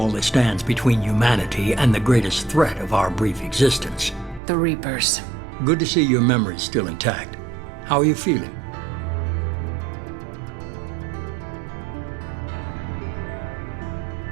that stands between humanity and the greatest threat of our brief existence. The Reapers. Good to see your memory's still intact. How are you feeling?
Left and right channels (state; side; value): drops out; left; at 4.4 s